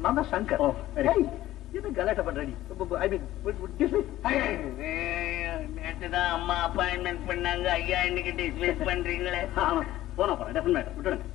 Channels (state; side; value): quieter; right; 14.8 dB